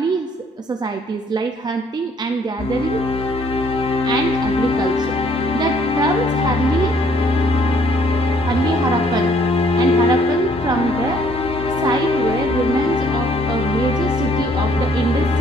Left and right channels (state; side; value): normal; both; correlation 0.63